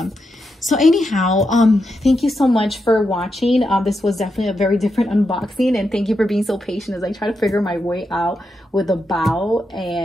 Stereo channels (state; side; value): normal; both; correlation 0.85